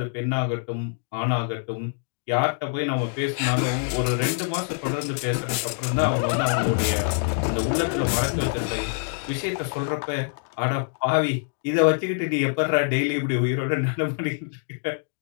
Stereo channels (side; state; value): right; silent; 62 dB below the other